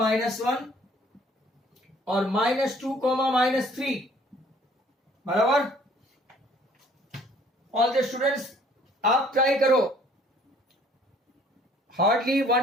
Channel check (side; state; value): both; normal; correlation 0.58